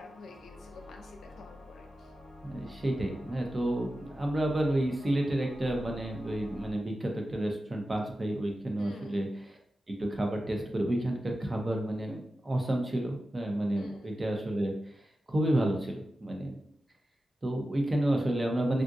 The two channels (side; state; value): both; normal; correlation 0.93